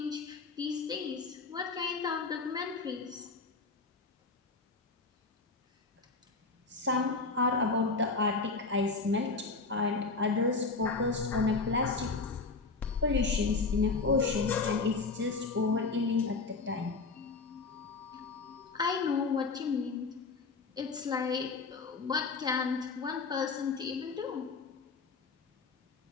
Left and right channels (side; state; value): right; quieter; 4.1 dB